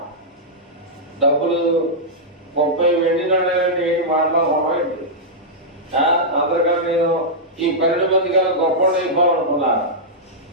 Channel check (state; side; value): normal; both; correlation -0.10